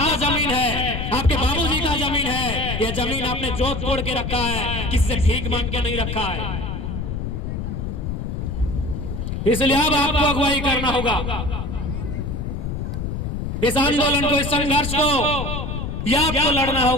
जमीन है, आपके बाबूजी का जमीन है, ये जमीन आपने जोत तोड़ के रखा है, किसी से भीख मांग के नहीं रखा है। इसलिए अब आपको अगुवाई करना होगा इस आंदोलन को, इस संघर्ष को, यह आपको लड़ना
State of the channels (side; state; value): left; noise; rumble, 4 dB below the sound